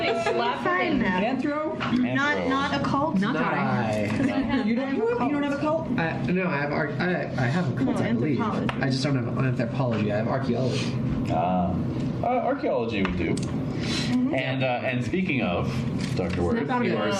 slapped Find him. that. Anthro? Not occult. Not I. You don't have a cult? No, I have I have a cult, No, I believe. anthropology. I just don't have anthropology. I have archaeology. Archaeology would do. And speaking of Dr. Worth, Snap out of you it. are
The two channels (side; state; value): both; identical; correlation 1.00